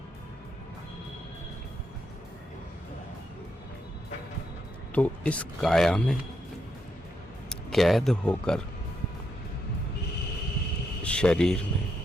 तो इस काया में कैद होकर, शरीर में,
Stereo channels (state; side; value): normal; both; correlation 0.80